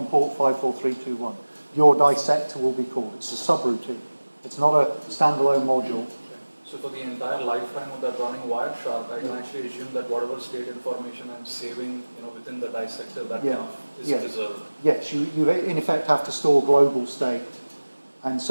port 54321. Your dissector will be called. It's a subroutine. It's not a standalone module. So for the entire lifetime of that running Wireshark, I can actually assume that whatever state information I'm saving, within the dissector, that Yeah. kind of is Yeah. preserved. Yes, you in effect have to store global state, and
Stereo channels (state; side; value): inverted; both; correlation -1.00